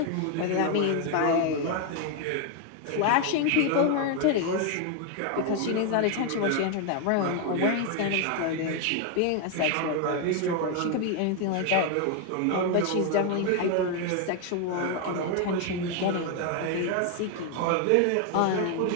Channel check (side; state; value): both; different; correlation 0.01